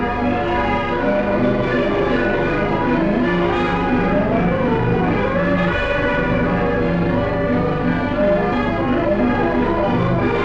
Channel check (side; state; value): both; identical; correlation 1.00